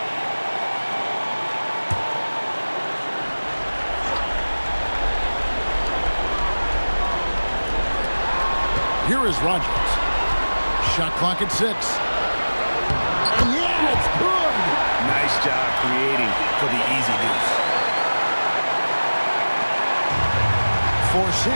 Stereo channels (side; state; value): both; inverted; correlation -1.00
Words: Here is Rogers. Shot clock at 6. And yeah, it's good. Nice job creating for the easy deuce. For